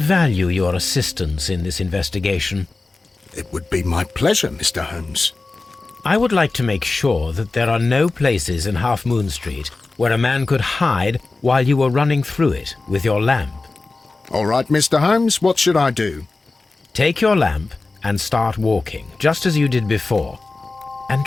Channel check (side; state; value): right; quieter; 3.5 dB